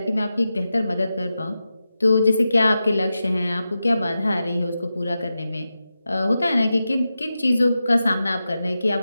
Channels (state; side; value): inverted; both; correlation -0.91